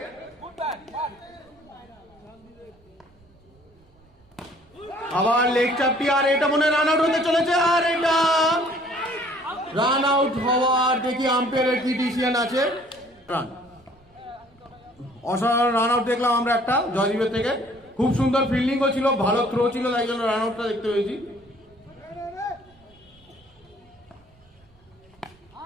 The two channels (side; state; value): right; noise; rumble, 30 dB below the sound